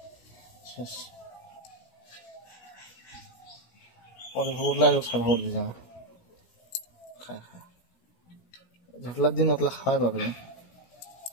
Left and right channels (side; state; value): right; late; 17 ms